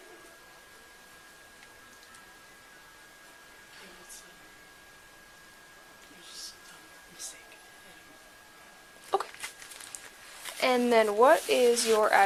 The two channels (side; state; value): both; identical; correlation 1.00